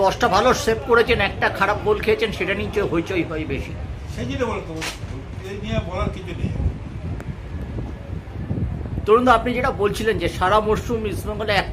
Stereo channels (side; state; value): both; identical; correlation 1.00